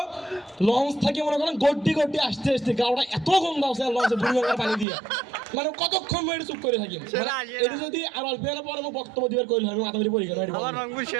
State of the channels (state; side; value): drops out; left; at 4.9 s